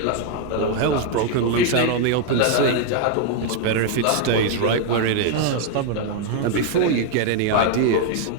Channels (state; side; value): different; both; correlation 0.00